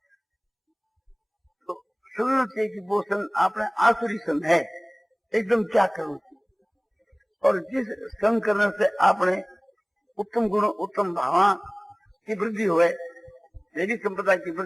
तो समझना चाहिए कि वो संग आपने आसुरी संग है, एकदम त्याग करना चाहिए। और जिस संग करने से आपने उत्तम गुण, उत्तम भावना की वृद्धि हुए, देवी संप्रदाय की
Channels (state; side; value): identical; both; correlation 1.00